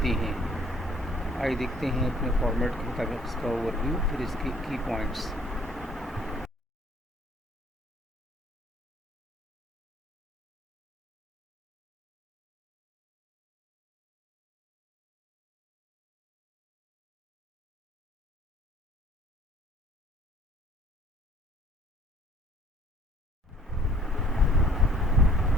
ہیں۔ آئیے دیکھتے ہیں اپنے فارمیٹ کے مطابق اس کا اوور ویو، پھر اس کے کی پوائنٹس۔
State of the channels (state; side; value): normal; both; correlation 0.58